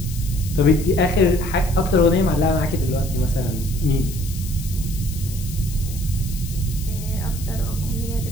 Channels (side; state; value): left; noise; hiss, 13 dB below the sound